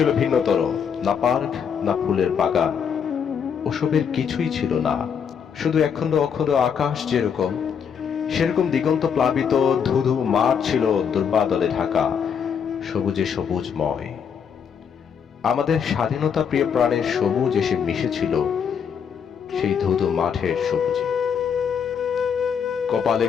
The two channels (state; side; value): quieter; right; 7.2 dB